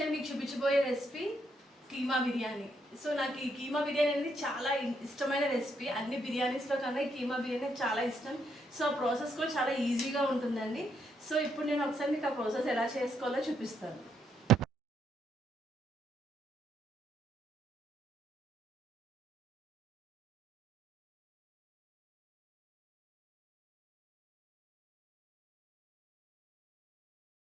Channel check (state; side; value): normal; both; correlation 0.75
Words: మీకు చూపించబోయే రెసిపీ కీమా బిర్యానీ. సో నాకు ఈ కీమా బిర్యానీ అనేది చాలా ఇష్టమైన రెసిపీ. అన్ని బిర్యానీస్లో కన్నా ఈ కీమా బిర్యానీ చాలా ఇష్టం. సో ఆ ప్రాసెస్ కూడా చాలా ఈజీగా ఉంటుందండి. సో ఇప్పుడు నేను ఒకసారి మీకు ఆ ప్రాసెస్ ఎలా చేసుకోవాలో చూపిస్తాను.